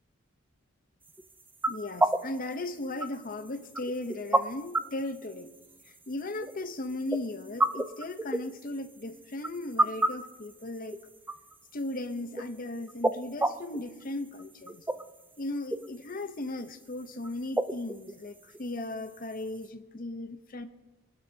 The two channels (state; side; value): normal; both; correlation 0.64